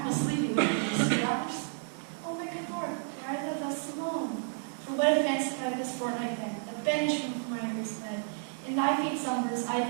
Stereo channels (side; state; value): left; silent; 57 dB below the other